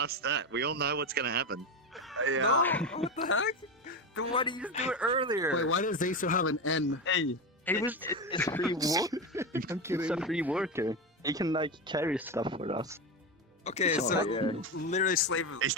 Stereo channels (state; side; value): normal; both; correlation 0.17